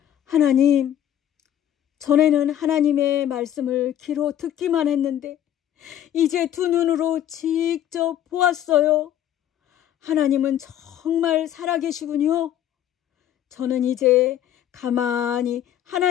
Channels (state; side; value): quieter; right; 11.1 dB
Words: 하나님, 전에는 하나님의 말씀을 귀로 듣기만 했는데 이제 두 눈으로 직접 보았어요. 하나님은 정말 살아계시군요. 저는 이제 가만히